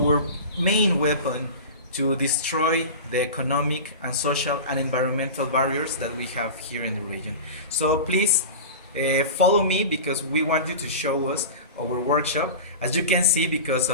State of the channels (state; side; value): inverted; both; correlation -0.31